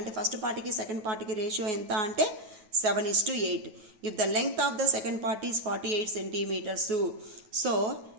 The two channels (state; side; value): late; left; 9.1 ms